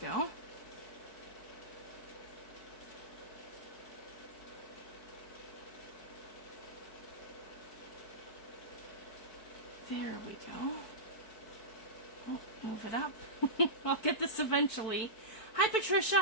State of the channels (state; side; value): late; right; 4.5 ms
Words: There we go. Oh, move it up. I'll get this eventually. Hi